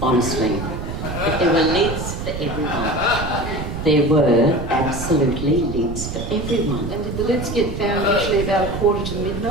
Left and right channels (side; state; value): right; noise; rumble, 6 dB below the sound